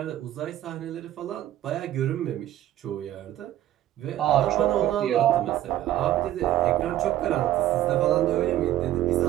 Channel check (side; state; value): left; quieter; 13.3 dB